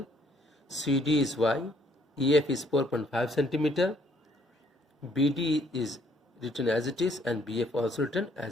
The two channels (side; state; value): both; normal; correlation 0.66